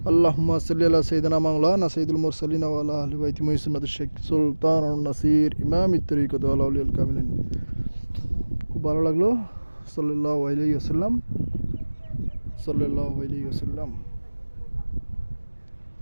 আল্লাহুম্মা সাল্লি আলা সাইয়্যিদিনা মাওলানা সাইয়্যিদুল মুরসালিন ওয়া আলা আহলি বাইতি মুহসিনাত শেখ সুলতানুন নাসির ইমামিত তরিকত ওয়া আউলিয়াল কামিলিন। খুব ভালো লাগলো। সাল্লাল্লাহু আলাইহি ওয়াসাল্লাম।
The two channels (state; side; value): inverted; both; correlation -1.00